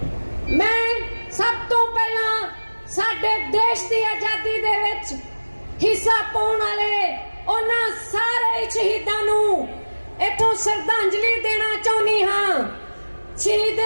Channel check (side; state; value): both; inverted; correlation -1.00